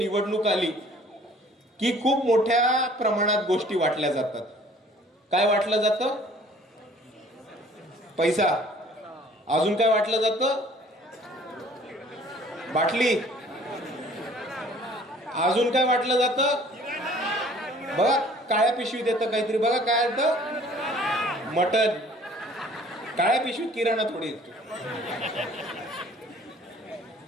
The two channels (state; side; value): normal; both; correlation 0.53